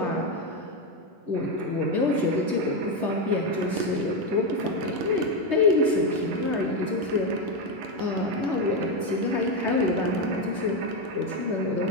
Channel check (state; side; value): late; left; 11 ms